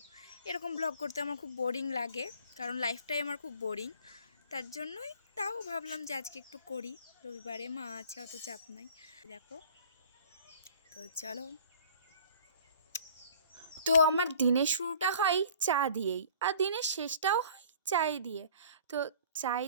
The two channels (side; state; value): both; inverted; correlation -0.49